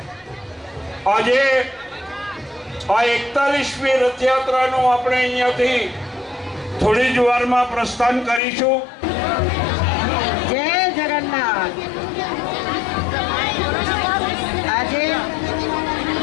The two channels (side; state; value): right; drops out; at 8.4 s